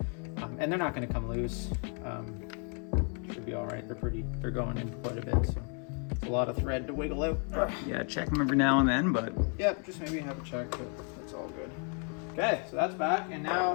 And they're not gonna come loose. Should be all right. They're going in quite a bit, so it's a lot of thread to wiggle out. Yeah, check them every now and then, but Yep, just maybe have a check, but that's all good. Okay, so that's back, and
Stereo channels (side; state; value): right; quieter; 40.0 dB